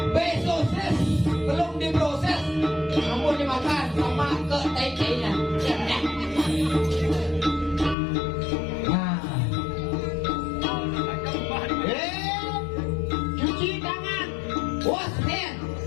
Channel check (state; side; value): drops out; right; at 8.0 s